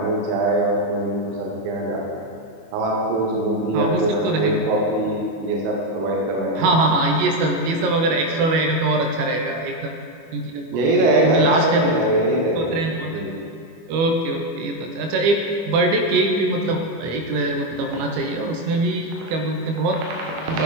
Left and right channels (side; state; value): left; late; 25 ms